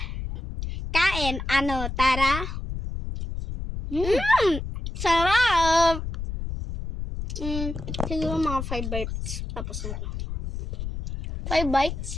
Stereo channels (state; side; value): noise; left; rumble, 6 dB below the sound